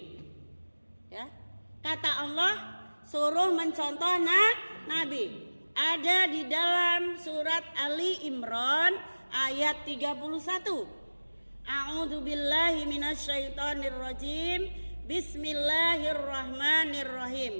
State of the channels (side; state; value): both; inverted; correlation -1.00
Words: ya. Kata Allah suruh mencontoh Nabi. Ada di dalam surat Ali Imran ayat 31. A'udzubillahi minasyaitonirrajim.